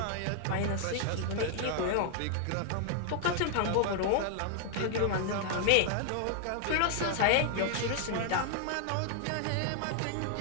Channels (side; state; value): both; different; correlation 0.00